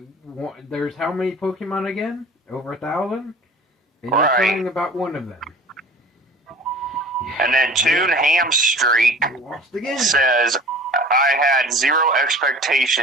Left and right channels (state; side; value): normal; both; correlation 0.44